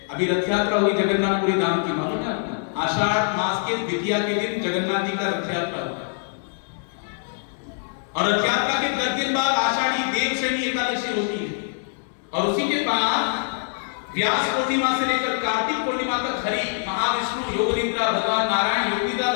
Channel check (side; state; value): right; silent; digital silence